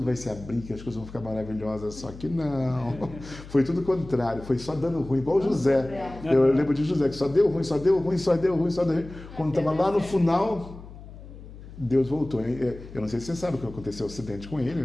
vai se abrir, que as coisas vão ficar maravilhosas, só que não. Foi tudo o contrário, foi só dando ruim, igual o José. Eu lembro de José, que só deu ruim, só deu ruim, só deu ruim, só deu ruim. Quando estava lá no final, Deus voltou. Eu não sei se você sabe o que aconteceu, o acidente com ele,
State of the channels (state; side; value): noise; left; hum, 16 dB below the sound